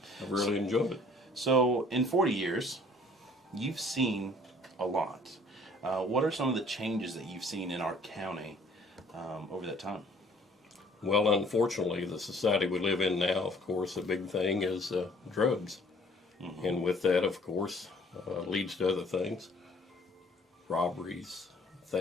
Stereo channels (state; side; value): normal; both; correlation 0.56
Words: I've really enjoyed it. So in 40 years, you've seen a lot. What are some of the changes that you've seen in our county over that time? Well, unfortunately, the society we live in now, of course, a big thing is drugs. Mm-hmm. And with that, of course, leads to other things. Robberies,